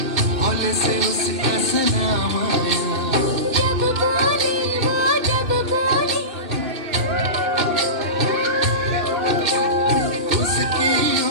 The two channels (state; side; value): late; left; 2.5 ms